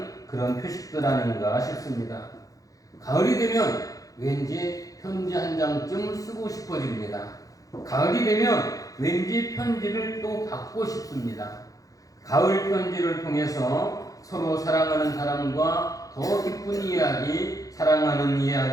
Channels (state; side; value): late; right; 0.17 ms